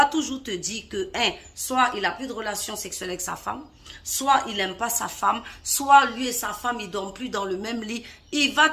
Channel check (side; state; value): both; identical; correlation 1.00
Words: toujours te dire que, soit il n'a plus de relation sexuelle avec sa femme, soit il n'aime pas sa femme, soit lui et sa femme, ils ne dorment plus dans le même lit. Il va